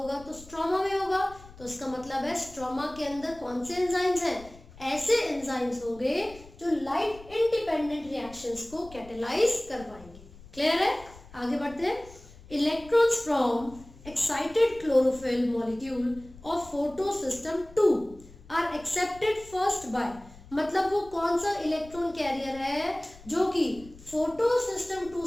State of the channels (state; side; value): noise; left; rumble, 20 dB below the sound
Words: तो स्ट्रोमा में होगा। तो इसका मतलब है स्ट्रोमा के अंदर कौन से एंजाइम्स हैं, ऐसे एंजाइम्स होंगे जो लाइट इंडिपेंडेंट रिएक्शंस को कैटेलाइज करवाएंगे। क्लियर है? आगे बढ़ते हैं। Electrons from excited chlorophyll molecule of photosystem 2 are accepted first by, मतलब वो कौन सा इलेक्ट्रॉन कैरियर है जो कि फोटोसिस्टम 2